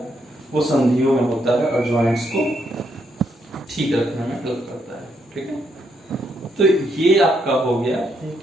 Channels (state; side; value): normal; both; correlation 0.76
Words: वो संधियों में होता है और जॉइंट्स को ठीक रखने में हेल्प करता है। ठीक है, तो ये आपका हो गया